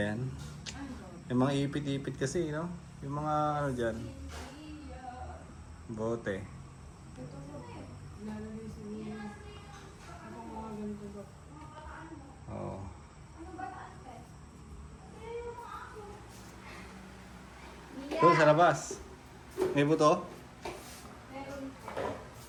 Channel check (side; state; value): both; identical; correlation 1.00